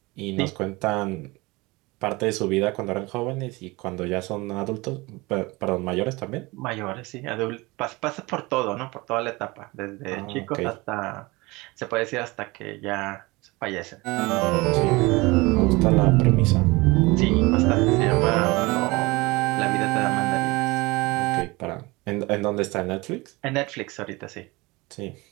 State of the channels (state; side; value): quieter; left; 23.3 dB